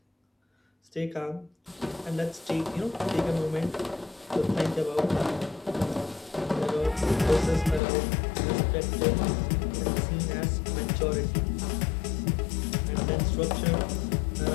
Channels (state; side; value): drops out; right; at 7.8 s